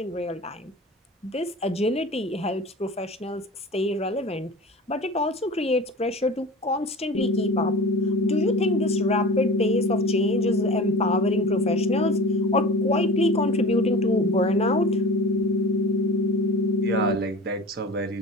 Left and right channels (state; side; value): normal; both; correlation 0.37